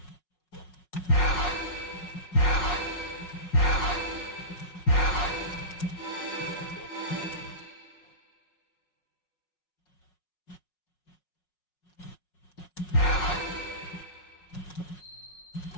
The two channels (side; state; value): right; late; 5.5 ms